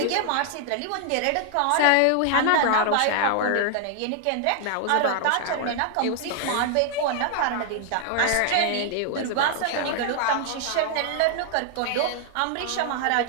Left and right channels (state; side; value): different; both; correlation 0.00